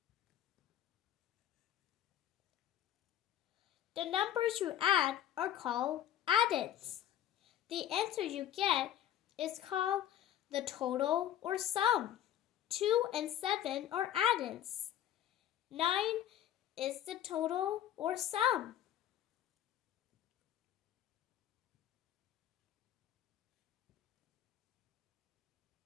The numbers you add are called addends. The answer you get is called the total or sum. 2 and 7 are addends. 9 is the total or sum.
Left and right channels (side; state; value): right; quieter; 11.3 dB